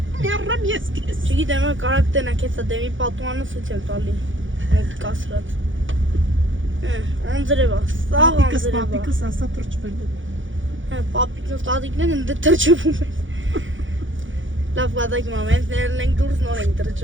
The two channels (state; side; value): late; left; 0.56 ms